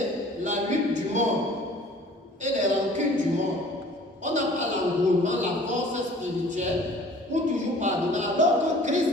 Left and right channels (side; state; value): both; normal; correlation 0.49